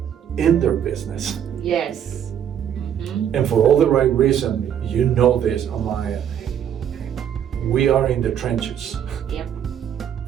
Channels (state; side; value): quieter; left; 9.4 dB